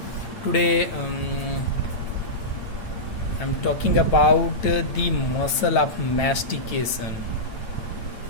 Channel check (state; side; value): late; right; 9.1 ms